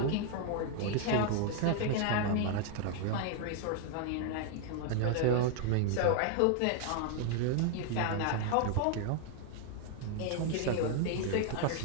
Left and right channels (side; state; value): both; different; correlation 0.00